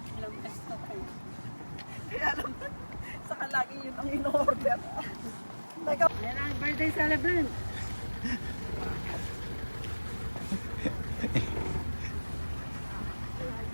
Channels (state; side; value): inverted; both; correlation -1.00